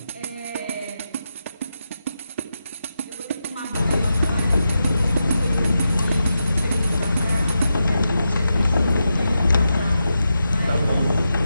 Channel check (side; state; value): both; inverted; correlation -0.88